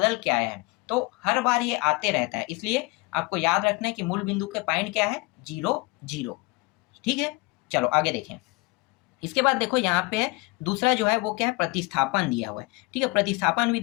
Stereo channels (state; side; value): quieter; right; 23.8 dB